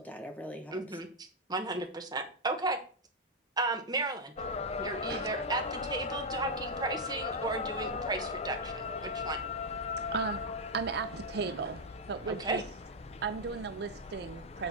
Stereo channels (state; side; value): normal; both; correlation -0.02